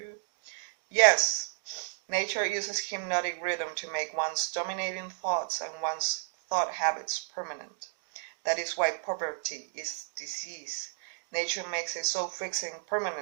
Yes. Nature uses hypnotic rhythm to make one's dominating thoughts and one's thought habits permanent. That is why poverty is disease. Nature makes it so fixing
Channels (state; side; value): silent; left; digital silence